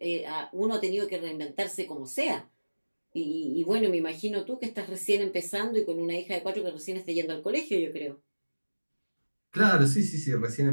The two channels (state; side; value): inverted; both; correlation -1.00